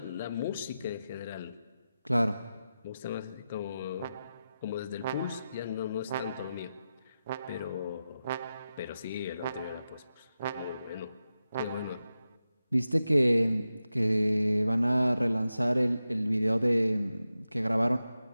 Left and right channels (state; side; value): inverted; both; correlation -0.91